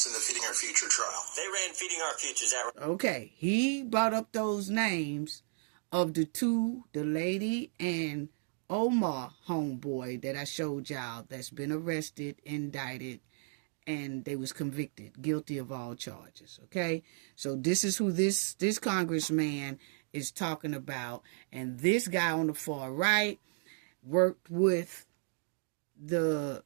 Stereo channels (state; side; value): silent; left; 55 dB below the other